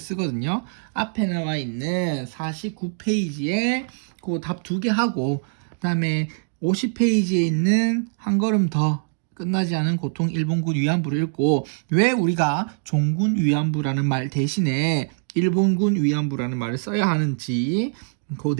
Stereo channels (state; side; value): silent; left; 63 dB below the other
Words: 앞에 나와 있는 49페이지에 그 답 2개 하고 그 다음에 50페이지에 있는 한 걸음 더 끝나지 않은 고통 일본군 위안부를 읽고 왜 우리가 종군 위안부라는 말 대신에 일본군 위안부라는 말을 써야 하는지 그